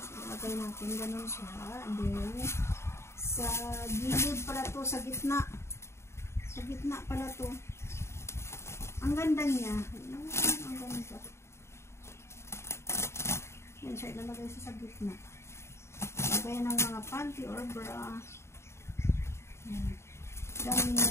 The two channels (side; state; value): right; late; 0.13 ms